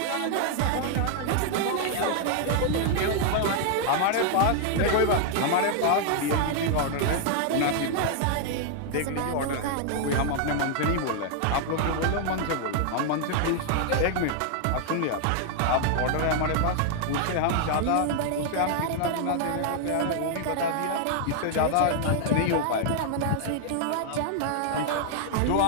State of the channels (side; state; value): both; different; correlation 0.00